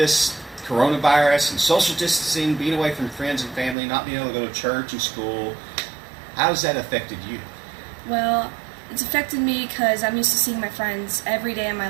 coronavirus and social distancing, being away from friends and family, not being able to go to church and school, how has that affected you? Well, it's affected me because I'm used to seeing my friends every day of my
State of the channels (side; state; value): left; drops out; at 3.8 s